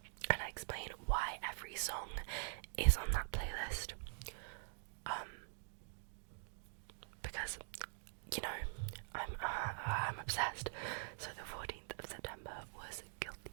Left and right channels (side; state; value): left; silent; digital silence